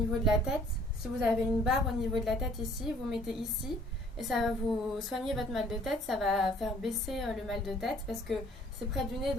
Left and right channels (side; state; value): both; normal; correlation 0.58